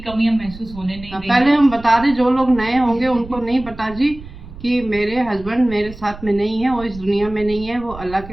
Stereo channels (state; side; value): noise; right; rumble, 16 dB below the sound